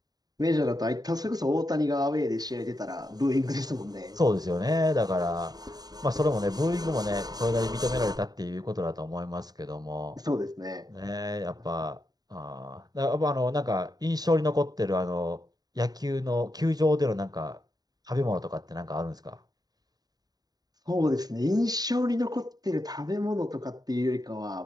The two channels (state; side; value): late; left; 0.19 ms